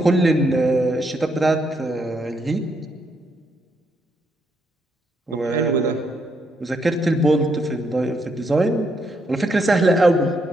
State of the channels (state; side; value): normal; both; correlation 0.76